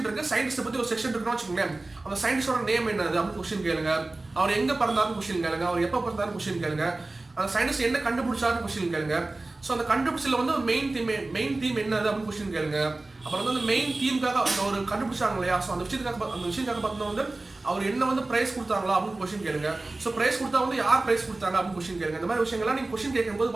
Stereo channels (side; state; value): left; quieter; 3.1 dB